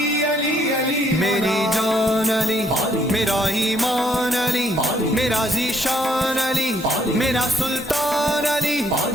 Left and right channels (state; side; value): normal; both; correlation 0.69